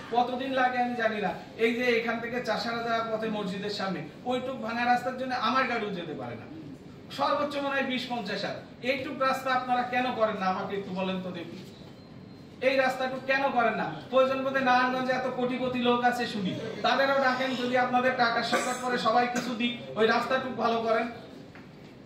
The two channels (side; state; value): both; identical; correlation 1.00